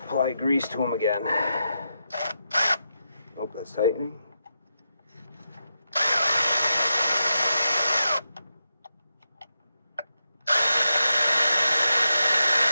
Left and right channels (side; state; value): both; inverted; correlation -0.86